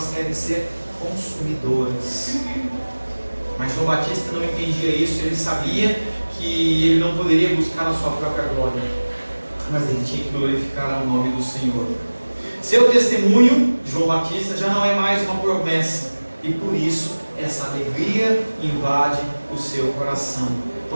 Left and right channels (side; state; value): both; inverted; correlation -1.00